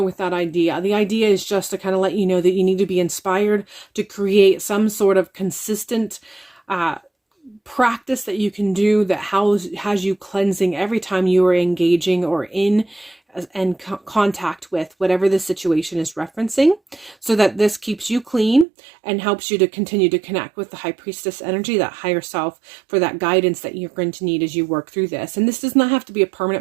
with that idea. The idea is just to kind of let you know that you need to be inspired to create some sort of consistent practice that you can do that has you cleansing every time you are engaging or in and contact with whatever the situation is referencing, so that this keeps you clean and helps you to continue to connect with the high priestess energy, that higher self, for that guidance that you're going to need as you work through this. And this does not have to be a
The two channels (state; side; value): drops out; left; at 18.7 s